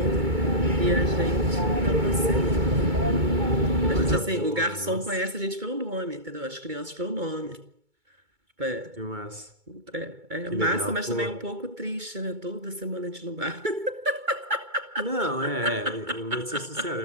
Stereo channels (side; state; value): left; late; 2.2 ms